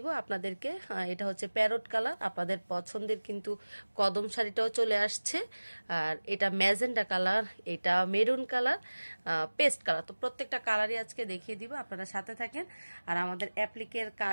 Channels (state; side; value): inverted; both; correlation -1.00